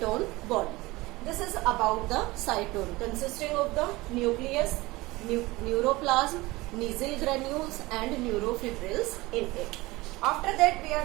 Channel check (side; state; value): left; quieter; 21.0 dB